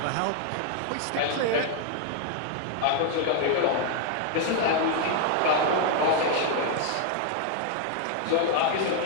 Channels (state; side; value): different; both; correlation 0.00